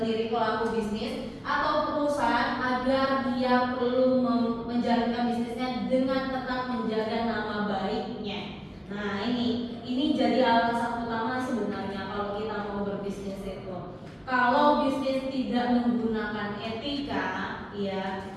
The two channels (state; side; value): identical; both; correlation 1.00